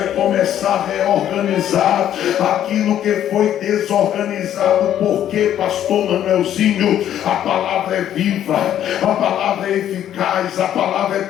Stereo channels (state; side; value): quieter; right; 10.9 dB